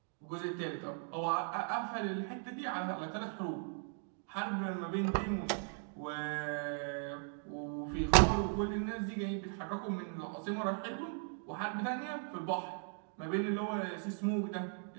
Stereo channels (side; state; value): left; silent; 52 dB below the other